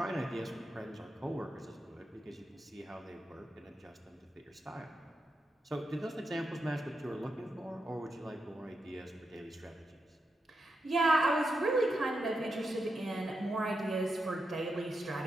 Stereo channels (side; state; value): both; normal; correlation 0.86